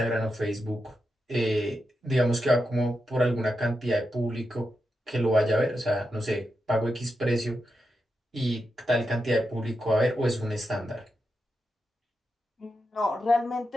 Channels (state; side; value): normal; both; correlation 0.87